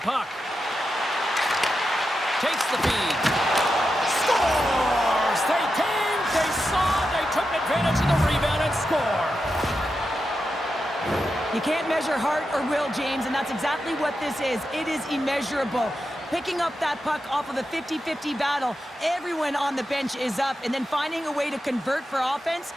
puck. Takes the feed. Scores! They came, they saw, they took advantage of the rebound and score. You can't measure heart or will, James, and that's exactly what this is. It is immeasurable. Picking up that puck off of a 50-50 battle, everyone on the bench is up, and then finding a way to convert for offense,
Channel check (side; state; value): both; normal; correlation 0.89